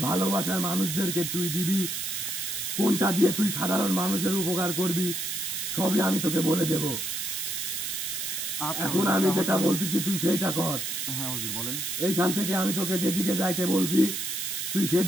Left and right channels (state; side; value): noise; right; hiss, 3 dB below the sound